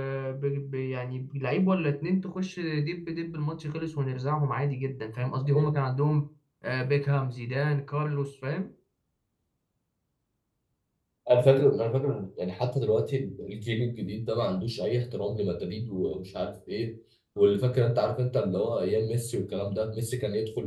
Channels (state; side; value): identical; both; correlation 1.00